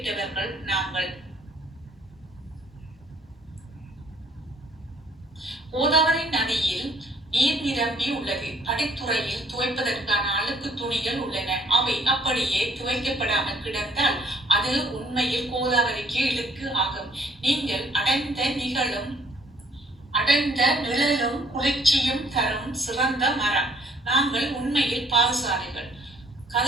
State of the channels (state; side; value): normal; both; correlation 0.62